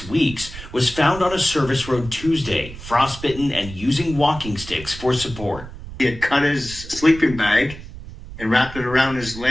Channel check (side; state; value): right; noise; rumble, 13 dB below the sound